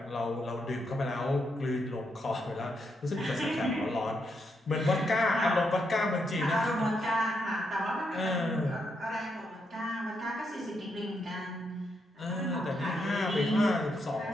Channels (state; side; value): normal; both; correlation 0.80